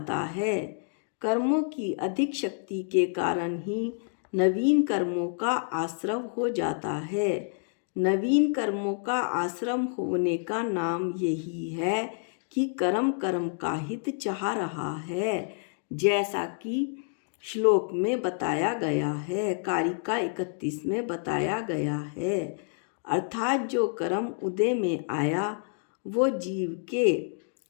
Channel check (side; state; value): right; silent; digital silence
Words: है। कर्मों की अधिक शक्ति के कारण ही नवीन कर्मों का आश्रम हो जाता है। नवीन कर्मों का आश्रम होने का नाम यही है कि कर्म का हित चाह रहा है, जैसा कि श्लोक में बताया गया है, कारिका 31 में बताया गया है। अर्थात जो कर्म उदय में आया वो जीव के